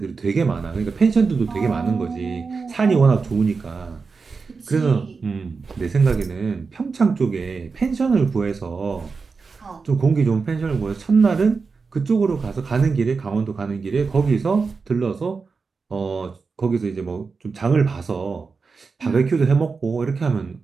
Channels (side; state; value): left; quieter; 4.7 dB